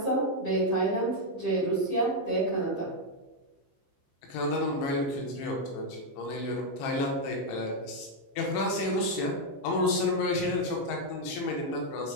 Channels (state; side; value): late; right; 15 ms